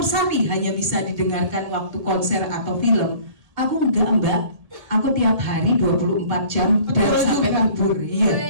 Sari hanya bisa didengarkan waktu konser atau film, aku enggak Mbak, aku tiap hari 24 jam dan sampai kabur,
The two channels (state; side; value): late; left; 1.8 ms